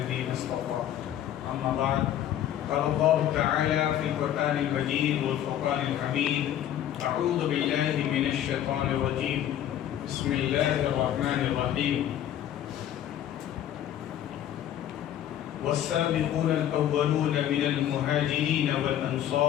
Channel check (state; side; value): quieter; right; 11.2 dB